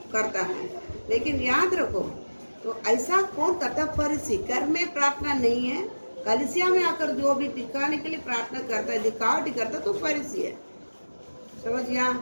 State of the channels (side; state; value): both; inverted; correlation -1.00